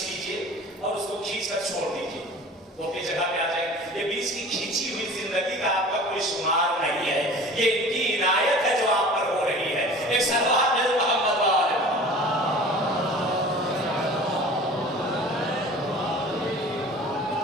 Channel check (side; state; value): both; normal; correlation 0.42